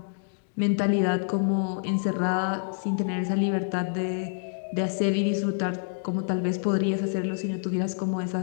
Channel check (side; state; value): right; silent; digital silence